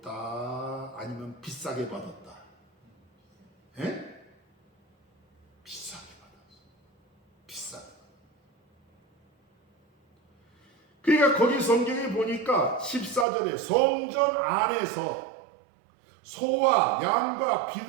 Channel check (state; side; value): drops out; left; at 13.2 s